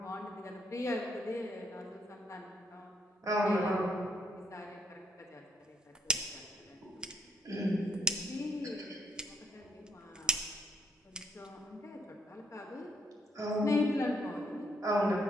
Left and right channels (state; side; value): normal; both; correlation 0.70